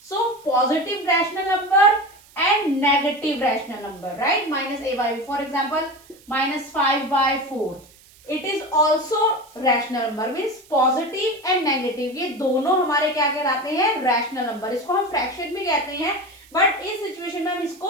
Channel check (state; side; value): noise; right; hiss, 26 dB below the sound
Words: So positive rational number and negative rational number, right, -a/b, for example -5/4, it is also rational number, means positive and negative, ये दोनों हमारे क्या कहलाते हैं? Rational number. इसको हम फ्रैक्शन भी कहते हैं, बट इस सिचुएशन में हम